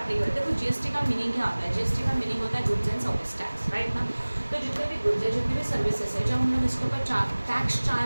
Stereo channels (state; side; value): inverted; both; correlation -1.00